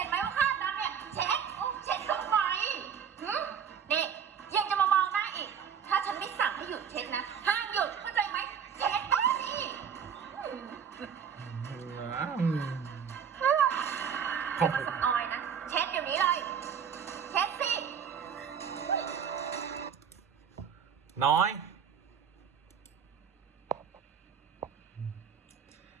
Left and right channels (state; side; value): quieter; left; 7.6 dB